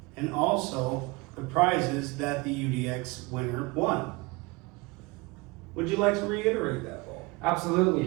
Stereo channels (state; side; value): quieter; left; 24.9 dB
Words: and also the prizes that the UDX winner won. Would you like to reiterate that, Paul?